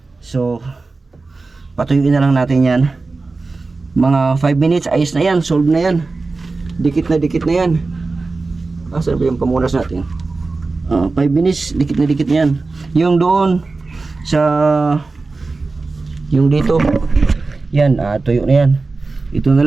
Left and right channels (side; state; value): left; quieter; 3.7 dB